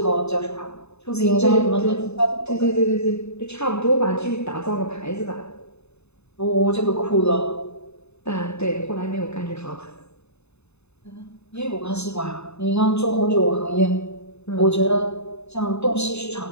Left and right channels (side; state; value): right; late; 0.80 ms